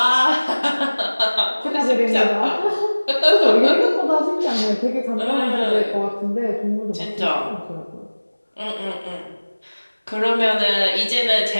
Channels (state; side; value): inverted; both; correlation -1.00